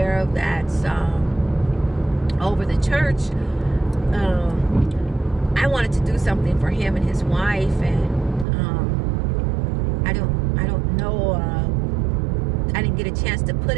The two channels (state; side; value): drops out; left; at 8.5 s